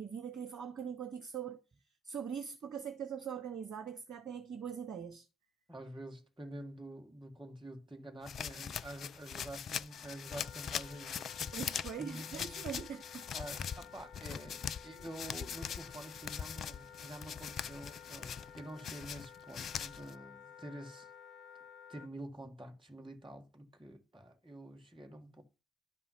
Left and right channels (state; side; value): normal; both; correlation 0.65